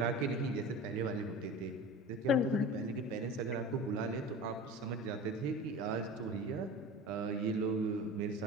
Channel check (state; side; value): normal; both; correlation 0.34